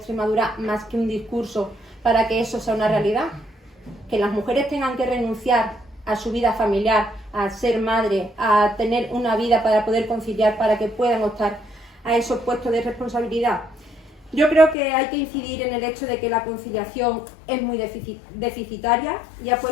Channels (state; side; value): drops out; right; at 14.8 s